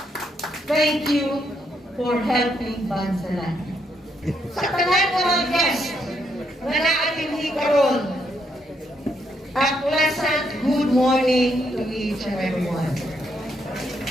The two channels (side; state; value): both; normal; correlation 0.76